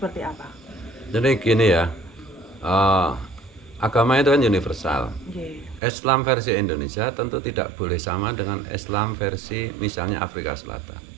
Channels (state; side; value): drops out; left; at 5.8 s